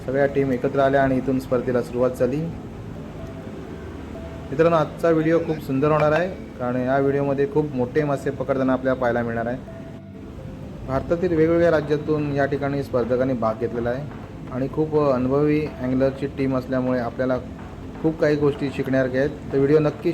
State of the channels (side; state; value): both; identical; correlation 1.00